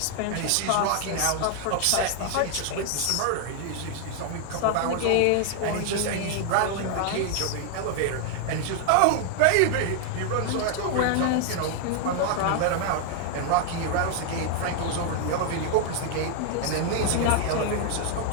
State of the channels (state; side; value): different; both; correlation 0.00